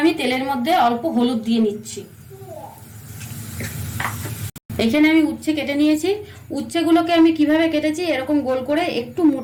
আমি তেলের মধ্যে অল্প হলুদ দিয়ে নিচ্ছি। এখানে আমি উচ্ছে কেটে নিয়েছি। উচ্ছেগুলোকে আমি কিভাবে কেটেছি, এরকম গোল করে একটু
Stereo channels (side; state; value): both; identical; correlation 1.00